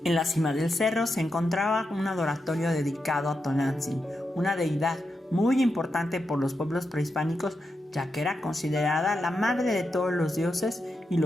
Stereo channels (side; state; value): both; normal; correlation 0.86